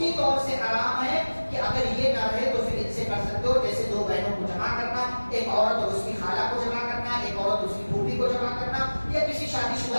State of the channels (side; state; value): both; inverted; correlation -1.00